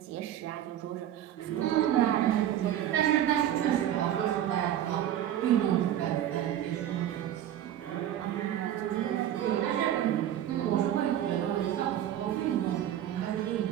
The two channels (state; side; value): quieter; left; 11.4 dB